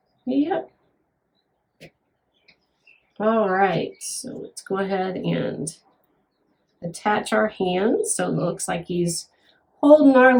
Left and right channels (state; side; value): identical; both; correlation 1.00